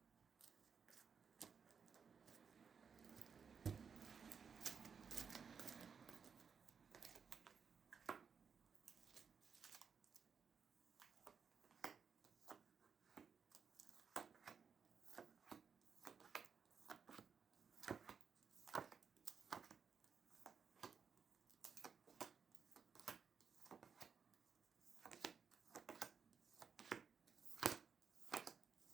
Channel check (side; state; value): left; quieter; 6.3 dB